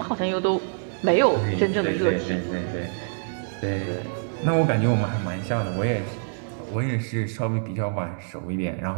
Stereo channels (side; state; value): left; silent; digital silence